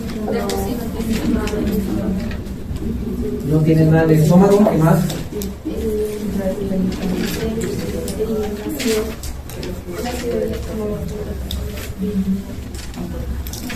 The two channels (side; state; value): both; identical; correlation 1.00